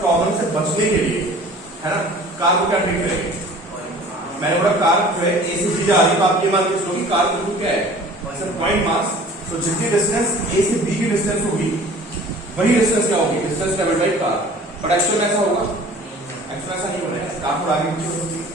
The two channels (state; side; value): normal; both; correlation 0.46